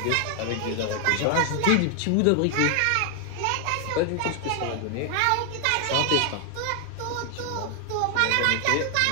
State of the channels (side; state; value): both; different; correlation 0.00